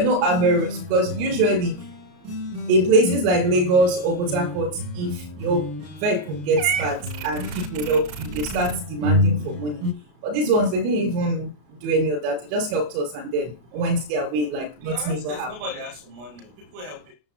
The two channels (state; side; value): late; left; 33 ms